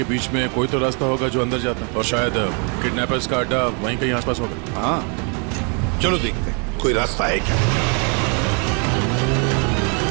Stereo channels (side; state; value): left; quieter; 36.8 dB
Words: बीच में कोई तो रास्ता होगा जो अंदर जाता है, और शायद किडनैपर्स का अड्डा वहीं कहीं आसपास होगा। हाँ, चलो देखते हैं कोई रास्ता है क्या।